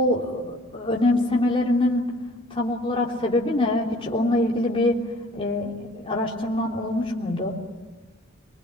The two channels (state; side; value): normal; both; correlation 0.53